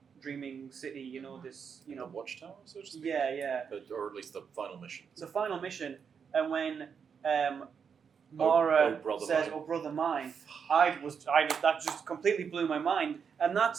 dreaming city, this The Watchtower, so to speak. yeah. Or at least the final mission. It's a final mission, and when Mara brother says, mine. "Oh, brother mine," that just completely blew my mind, and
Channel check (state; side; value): quieter; left; 6.6 dB